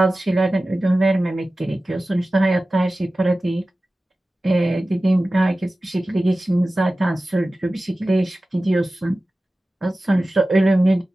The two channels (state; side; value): normal; both; correlation 0.96